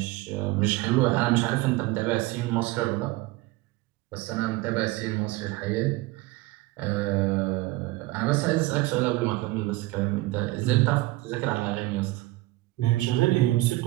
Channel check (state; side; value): quieter; left; 19.3 dB